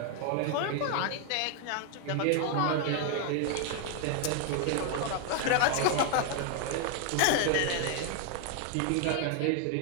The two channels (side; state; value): both; different; correlation 0.00